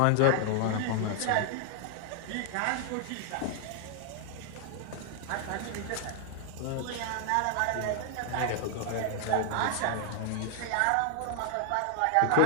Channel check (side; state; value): both; different; correlation 0.00